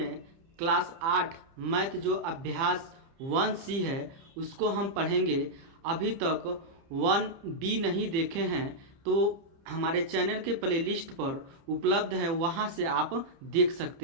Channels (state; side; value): late; left; 30 ms